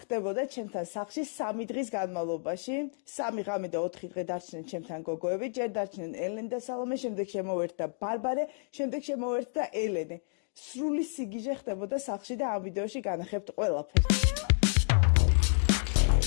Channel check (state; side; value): silent; right; digital silence